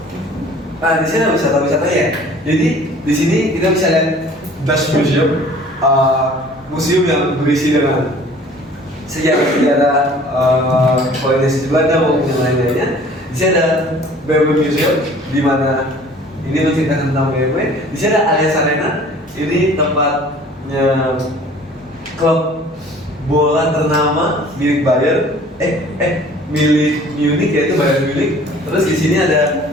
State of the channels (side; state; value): both; normal; correlation 0.50